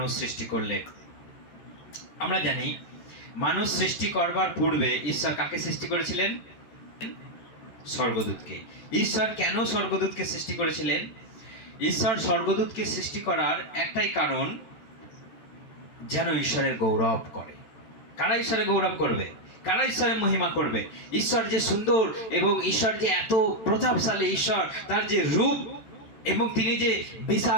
সৃষ্টি করলেন। আমরা জানি মানুষ সৃষ্টি করবার পূর্বে ঈশ্বর কাকে সৃষ্টি করেছিলেন? স্বর্গদূতকে। ঈশ্বর কেন স্বর্গদূতকে সৃষ্টি করেছিলেন? ঈশ্বর স্বর্গদূতকে সৃষ্টি করার একটাই কারণ, যেন ঈশ্বরের গৌরব করে। কারা ঈশ্বরের গৌরব করবে? কারা ঈশ্বরের মহিমা করবে? ঈশ্বর যে সুন্দর এবং ঈশ্বর যে এত প্রতাপশালী, ঈশ্বর তার যে রূপ এবং তিনি যে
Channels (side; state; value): right; late; 13 ms